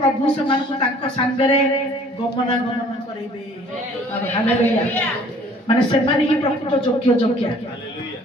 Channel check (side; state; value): both; normal; correlation 0.54